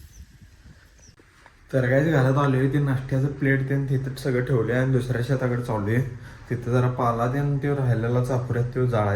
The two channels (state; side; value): identical; both; correlation 1.00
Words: तर काहीच घरात आलो आहे, ते नाश्त्याचं प्लेट ते तिथं सगळं ठेवले आणि दुसऱ्या शेताकडे चालू आहे. तिथं जरा पाला त्यानं ते राहिलेला चापुऱ्यात तो